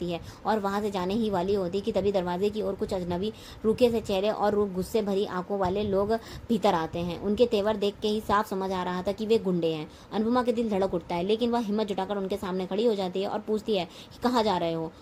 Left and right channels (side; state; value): both; identical; correlation 1.00